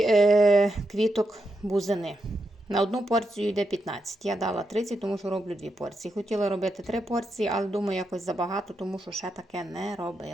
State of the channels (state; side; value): normal; both; correlation 0.84